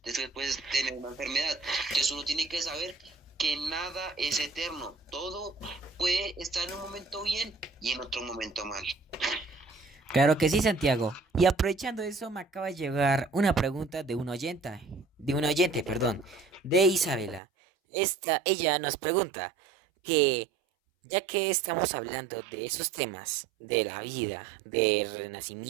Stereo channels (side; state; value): left; drops out; at 17.4 s